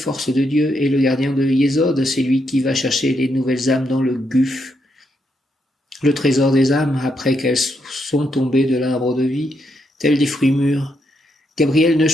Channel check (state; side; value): normal; both; correlation 0.80